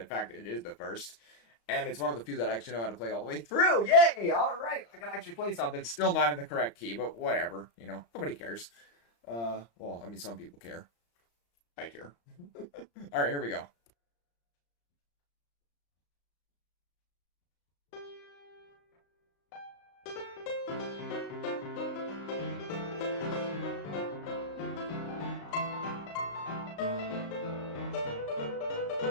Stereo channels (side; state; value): right; late; 35 ms